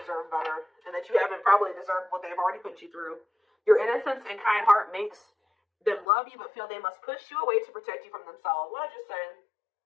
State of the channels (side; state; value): right; drops out; at 6.1 s